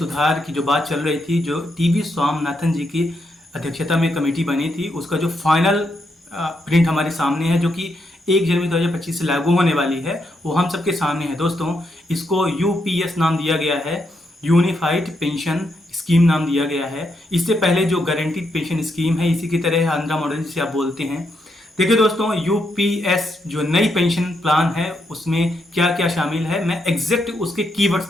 की जो बात चल रही थी, जो टीवी स्वामीनाथन जी की अध्यक्षता में कमेटी बनी थी, उसका जो फाइनल प्रिंट हमारे सामने है, जो कि 1 जनवरी 2025 से लागू होने वाली है, वो हम सबके सामने है। दोस्तों, इसको यूपीएस नाम दिया गया है, यूनिफाइड पेंशन स्कीम नाम दिया गया है। इससे पहले जो गारंटीड पेंशन स्कीम है, इसी की तरह आंध्रा मॉडल जिसे आप बोलते हैं। देखिए दोस्तों, यूपीएस जो नई पेंशन प्लान है उसमें क्या क्या शामिल है, मैं एग्जैक्ट उसके कीवर्ड्स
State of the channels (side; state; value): both; normal; correlation 0.80